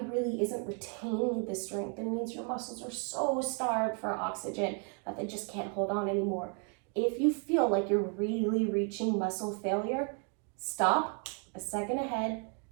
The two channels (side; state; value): left; quieter; 39.0 dB